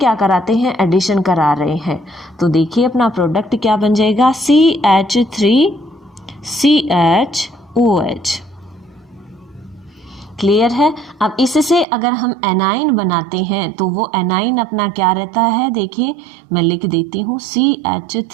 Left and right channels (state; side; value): drops out; left; at 11.9 s